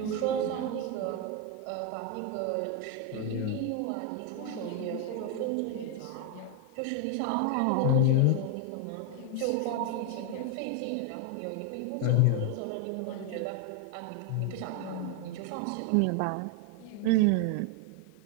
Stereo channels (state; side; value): different; both; correlation 0.01